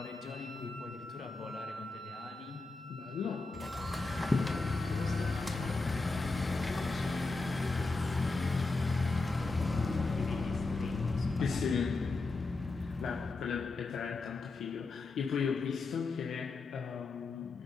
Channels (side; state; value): right; quieter; 3.6 dB